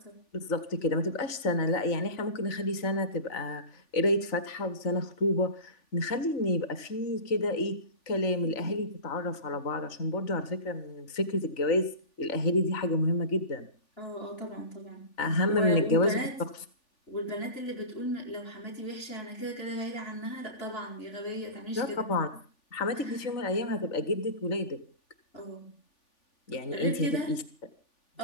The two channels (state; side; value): late; right; 3.5 ms